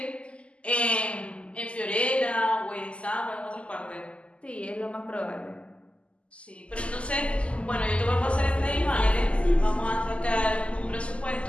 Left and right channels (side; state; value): right; late; 0.058 ms